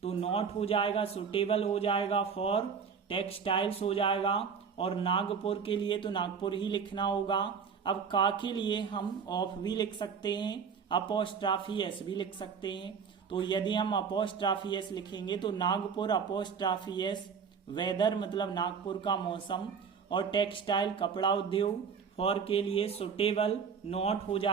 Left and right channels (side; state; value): left; quieter; 6.3 dB